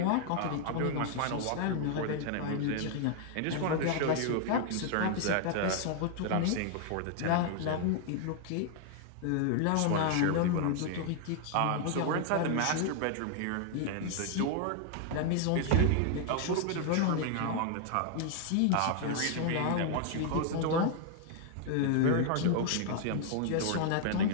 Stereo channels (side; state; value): both; different; correlation 0.00